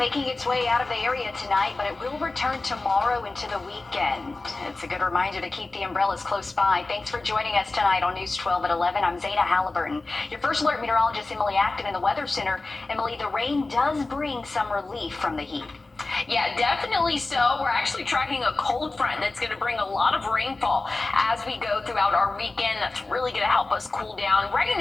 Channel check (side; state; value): right; quieter; 3.3 dB